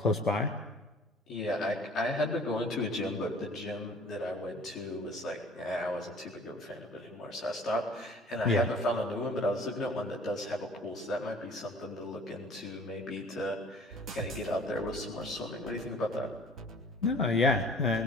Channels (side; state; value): both; normal; correlation 0.50